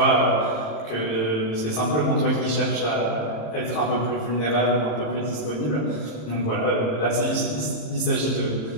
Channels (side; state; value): right; late; 26 ms